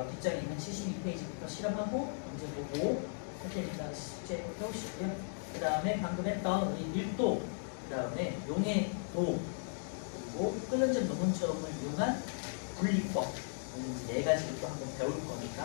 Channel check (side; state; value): right; silent; digital silence